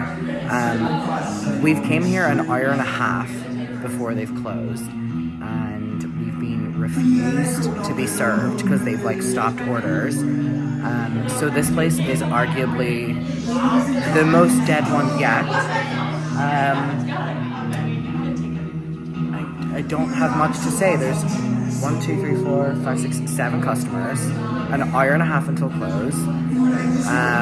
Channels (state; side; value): identical; both; correlation 1.00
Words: We've came here an hour and a half before they've closed, and we've been refused to be served because they've like stopped orders. So this place is arguably the most dead one yet. I don't have much to say. There's 1, 2, 3, 4, 5, 6, 7 customers, an hour and a half until close.